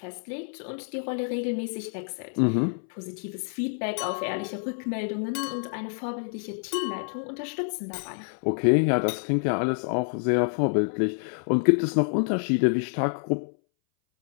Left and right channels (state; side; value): silent; right; 60 dB below the other